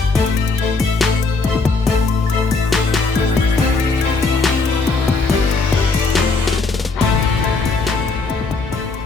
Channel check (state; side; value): quieter; right; 3.9 dB